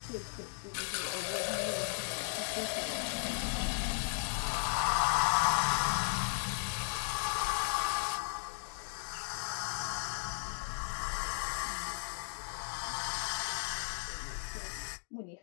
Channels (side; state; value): right; silent; digital silence